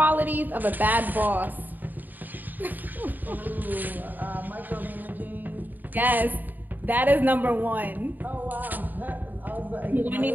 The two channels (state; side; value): late; left; 0.087 ms